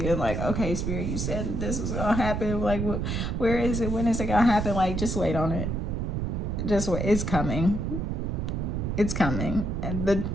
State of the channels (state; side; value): noise; right; rumble, 1 dB below the sound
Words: like, okay, Spirit, you said this was gonna happen. Like where is it? When is it gonna happen? Like just wait on it. Just wait. It's coming. It's coming, and